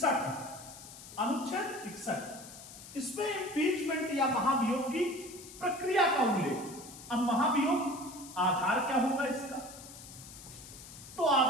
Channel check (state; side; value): noise; left; hiss, 15 dB below the sound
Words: 61 इसमें इम्पीचमेंट या महाभियोग की प्रक्रिया का उल्लेख। अब महाभियोग आधार क्या होगा इसका, तो